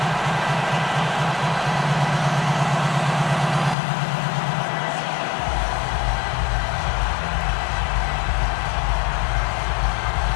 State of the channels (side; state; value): right; drops out; at 3.8 s